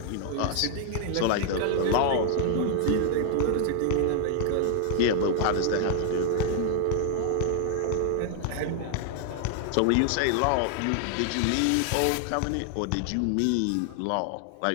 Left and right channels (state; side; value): different; both; correlation 0.00